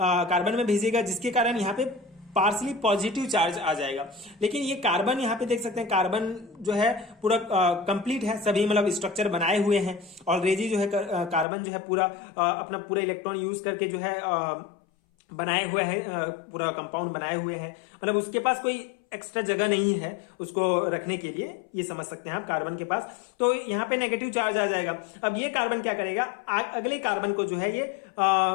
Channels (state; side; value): drops out; right; at 11.5 s